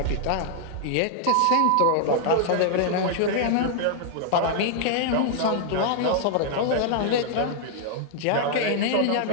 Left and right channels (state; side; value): different; both; correlation -0.01